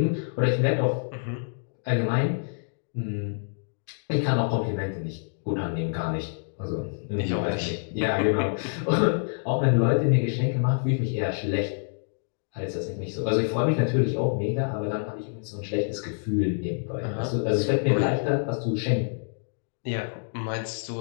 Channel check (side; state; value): right; silent; digital silence